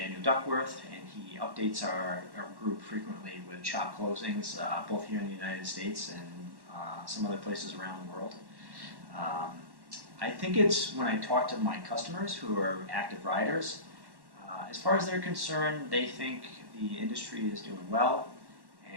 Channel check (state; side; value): late; left; 1.1 ms